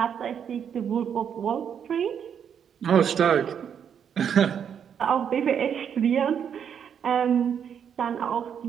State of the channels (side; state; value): left; quieter; 8.1 dB